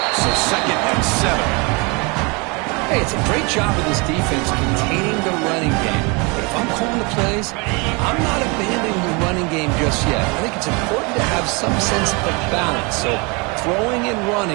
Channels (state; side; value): quieter; left; 29.5 dB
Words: so 2nd and 7. Hey, it's a great job of this defense containing the running game. But if I'm calling the plays, I'm not abandoning the running game just yet. I think it's important to have some sense of balance. So throwing and